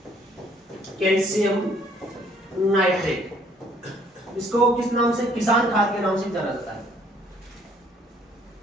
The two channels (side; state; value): both; normal; correlation 0.62